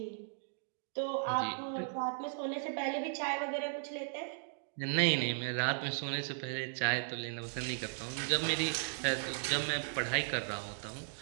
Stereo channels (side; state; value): left; silent; digital silence